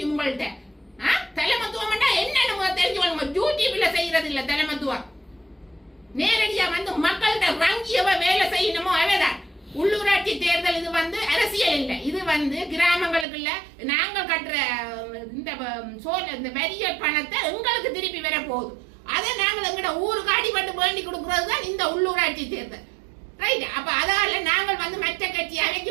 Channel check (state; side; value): drops out; left; at 13.2 s